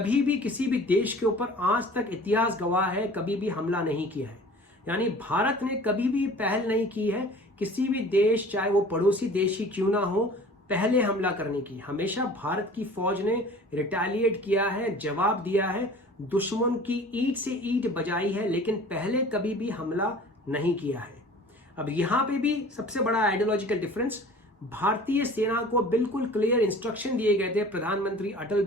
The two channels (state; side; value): normal; both; correlation 0.45